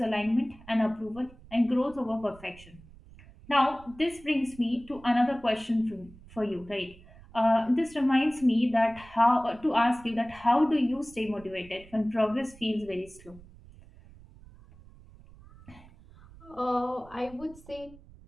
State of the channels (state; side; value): noise; right; rumble, 22 dB below the sound